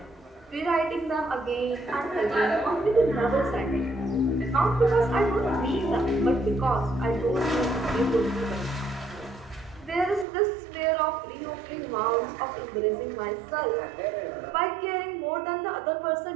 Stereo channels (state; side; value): drops out; left; at 10.2 s